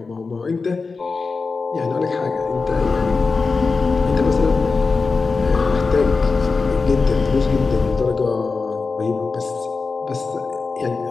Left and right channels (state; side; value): quieter; right; 4.3 dB